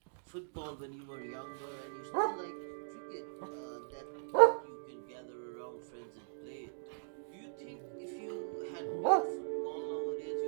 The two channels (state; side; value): silent; left; digital silence